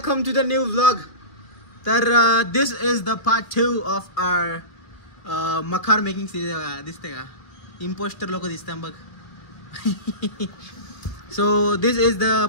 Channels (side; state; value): right; late; 2.2 ms